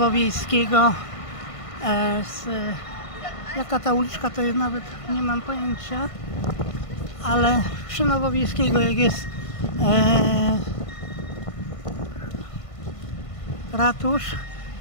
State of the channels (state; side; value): late; right; 1.5 ms